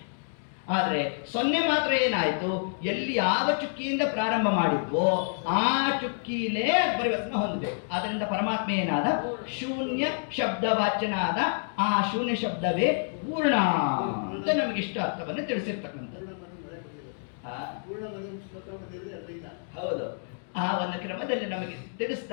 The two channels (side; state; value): right; silent; digital silence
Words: ಆದರೆ ಸೊನ್ನೆ ಮಾತ್ರ ಏನಾಯಿತು? ಎಲ್ಲಿ ಯಾವ ಚುಕ್ಕಿಯಿಂದ ಪ್ರಾರಂಭ ಮಾಡಿದ್ವೋ ಆ ಚುಕ್ಕಿಲೇ ಪರಿವರ್ತನೆ ಹೊಂದಬೇಕು. ಆದ್ದರಿಂದ ಪರಮಾತ್ಮ ಏನಾದ? ಶೂನ್ಯ ಶಬ್ದವಾಚ್ಯನಾದ. ಆ ಶೂನ್ಯ ಶಬ್ದವೇ ಪೂರ್ಣ ಅಂತ ನಮಗೆ ಇಷ್ಟ ಅರ್ಥವನ್ನು ತಿಳಿಸಿರ್ತಕ್ಕಂಥದ್ದು. ಹೌದು, ಆ ಒಂದು ಕ್ರಮದಲ್ಲಿ ನಮಗೆ